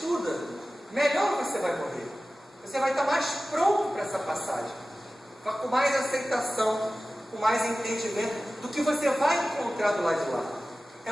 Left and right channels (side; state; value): both; normal; correlation 0.96